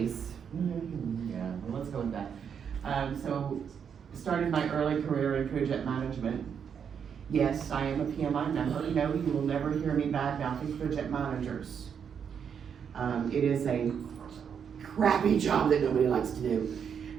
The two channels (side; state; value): left; quieter; 7.4 dB